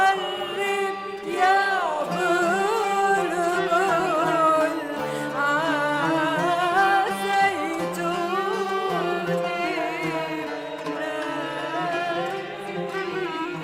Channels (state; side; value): identical; both; correlation 1.00